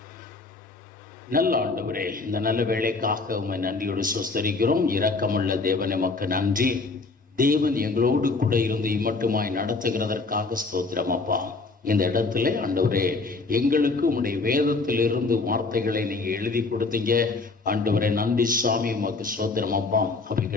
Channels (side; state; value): right; quieter; 3.8 dB